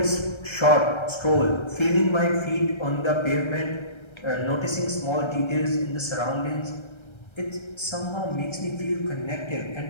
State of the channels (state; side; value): late; right; 1.3 ms